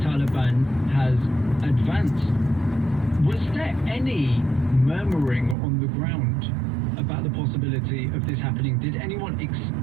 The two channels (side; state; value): left; drops out; at 5.6 s